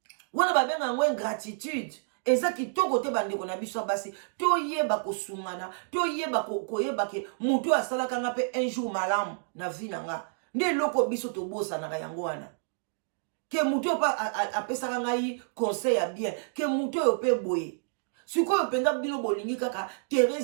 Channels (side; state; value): left; silent; digital silence